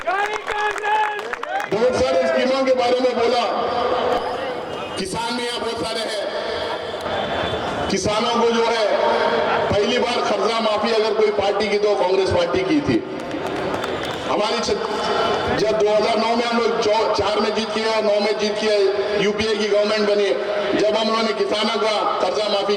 बहुत सारे स्कीमों के बारे में बोला, किसान में यहाँ बहुत सारे हैं। किसानों को जो है पहली बार कर्जा माफी अगर कोई पार्टी की तो कांग्रेस पार्टी की थी। हमारी जब 2009 में हम लोग 4 में जीत किया, 9 में जीत किया, यूपीए की गवर्नमेंट बनी, जब हम लोगों ने किसानों का कर्जा माफी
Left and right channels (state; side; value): identical; both; correlation 1.00